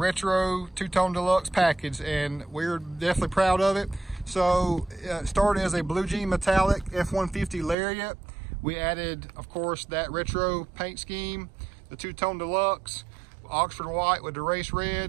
two-tone deluxe package, and we're definitely proud of it. So it started as a blue jean metallic F150 Lariat. We added, of course, that retro paint scheme, the two-tone deluxe, Oxford white with the race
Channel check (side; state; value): left; drops out; at 7.8 s